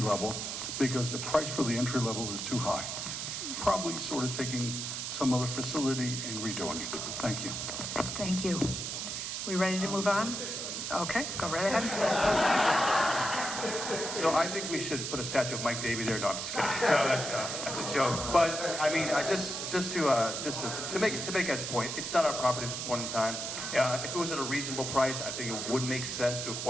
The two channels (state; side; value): noise; right; hiss, 4 dB below the sound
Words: level, because the price for the entry level is too high. Probably sort of taking some other facility and redoing it. Thank you. Thank you. We ready to move on? Okay, go right ahead. So I think we should put a statue of Mike Davey there. No, I'm just kidding. So that's a joke. But I mean, just to make Ed's point, it's not our property at this point in time. If it was at a reasonable price, I think it would make sense to